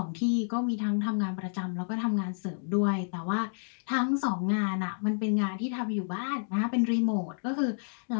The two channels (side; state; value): right; silent; digital silence